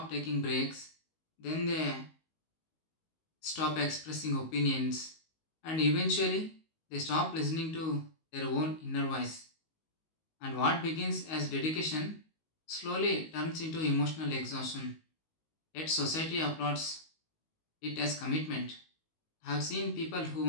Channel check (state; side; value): late; right; 19 ms